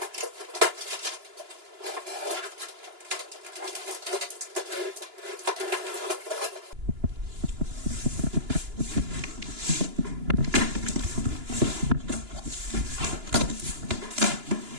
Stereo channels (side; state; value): left; late; 2.9 ms